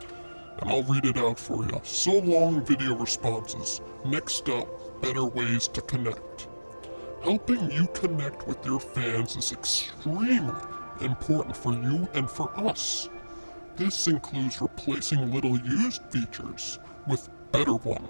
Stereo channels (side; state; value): both; inverted; correlation -1.00